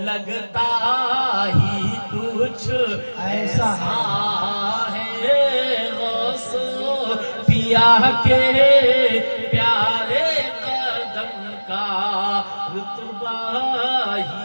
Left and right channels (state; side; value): inverted; both; correlation -1.00